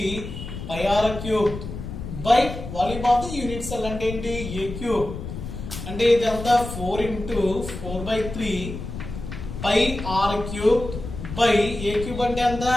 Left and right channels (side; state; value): left; noise; rumble, 9 dB below the sound